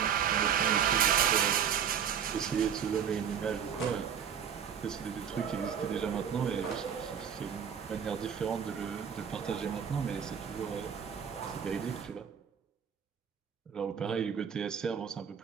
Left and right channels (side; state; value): left; quieter; 8.0 dB